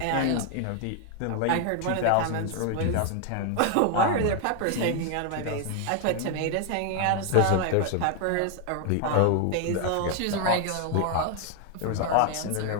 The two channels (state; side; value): different; both; correlation 0.00